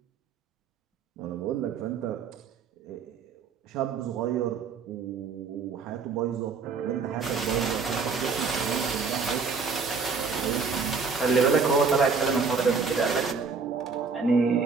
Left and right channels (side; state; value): left; quieter; 5.1 dB